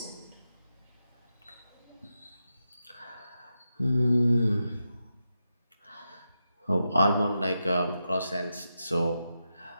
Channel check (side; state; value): both; inverted; correlation -0.88